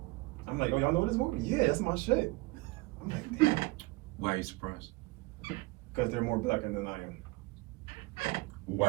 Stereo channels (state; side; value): quieter; left; 22.6 dB